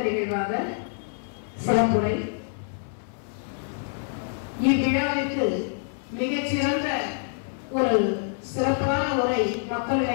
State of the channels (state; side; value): silent; right; 61 dB below the other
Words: நிகழ்வாக சிறப்புரை. இவ்விழாவிற்கு மிகச்சிறந்த ஒரு சிறப்பான உரை